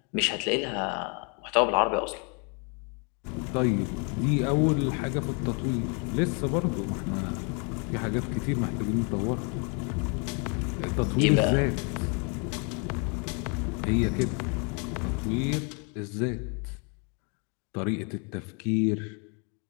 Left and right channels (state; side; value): quieter; right; 36.0 dB